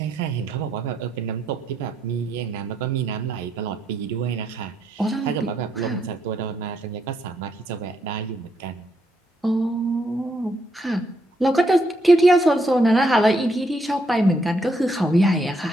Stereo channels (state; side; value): normal; both; correlation 0.76